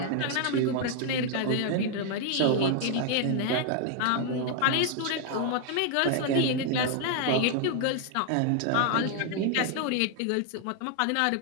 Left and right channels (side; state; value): both; different; correlation 0.00